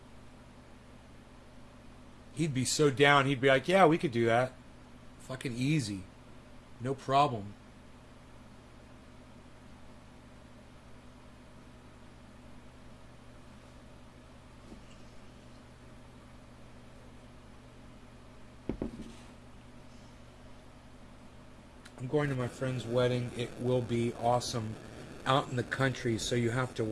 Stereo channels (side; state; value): both; identical; correlation 1.00